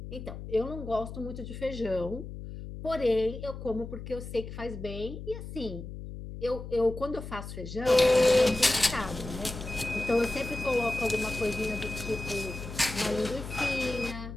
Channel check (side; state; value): left; noise; hum, 10 dB below the sound